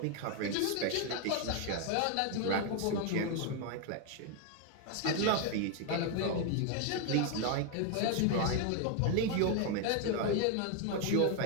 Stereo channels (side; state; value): both; different; correlation 0.01